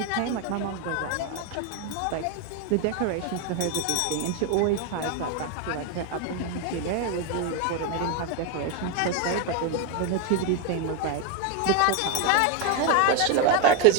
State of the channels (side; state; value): both; different; correlation 0.01